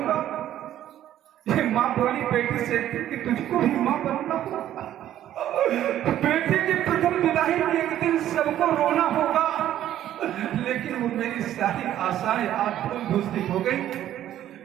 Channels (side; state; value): left; quieter; 12.1 dB